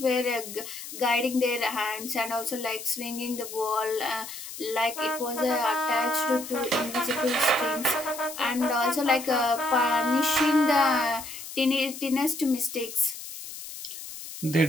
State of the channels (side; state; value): left; noise; hiss, 11 dB below the sound